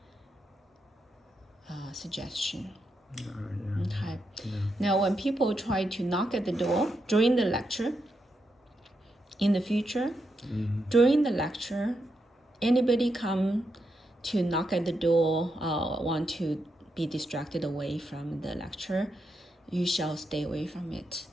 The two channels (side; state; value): both; normal; correlation 0.84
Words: suggestion. Okay. Now, when people try to knock at the door during the lecture, in the future, during the lecture, anybody come to knock at the door, want to be distracted away from the lecture, you shall stay away from it.